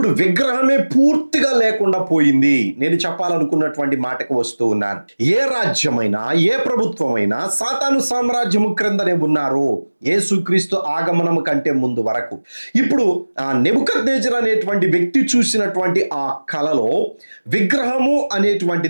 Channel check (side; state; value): both; inverted; correlation -1.00